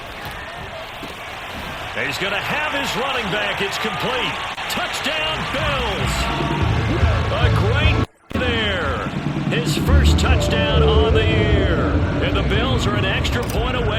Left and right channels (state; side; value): identical; both; correlation 1.00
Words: He's going to have his running back. It's complete. Touchdown, Bills. A great there. His first touchdown on the year. And the Bills are an extra point